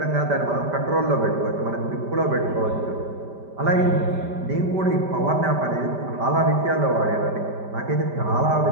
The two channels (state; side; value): late; left; 5.1 ms